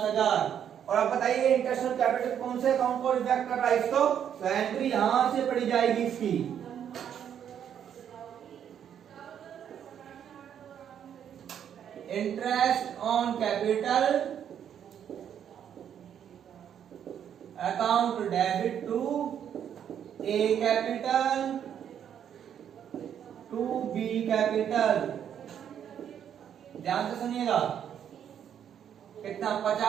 और अब बताइए इंटरेस्ट ऑन कैपिटल कौन से अकाउंट को रिफ्लेक्ट कर रहा है इसको? तो एंट्री यहां से पड़ी जाएगी इसकी। Interest on capital account debit to A capital to B capital. ध्यान से सुनिएगा। कितना?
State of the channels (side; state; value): left; quieter; 9.1 dB